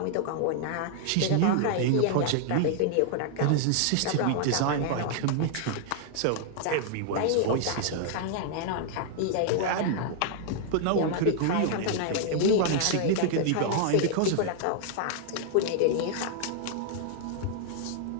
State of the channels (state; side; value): different; both; correlation 0.00